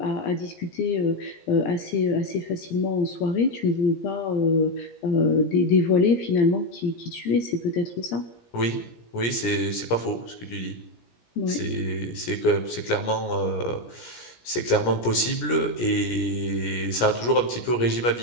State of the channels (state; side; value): late; right; 17 ms